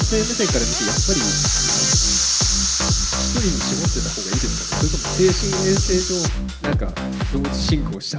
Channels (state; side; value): identical; both; correlation 1.00